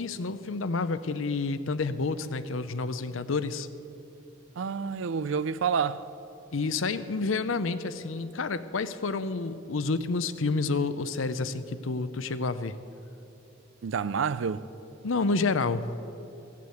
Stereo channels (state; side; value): normal; both; correlation 0.19